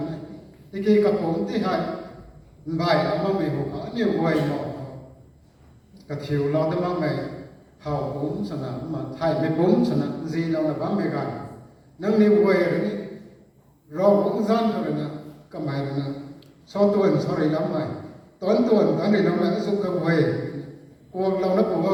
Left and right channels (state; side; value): identical; both; correlation 1.00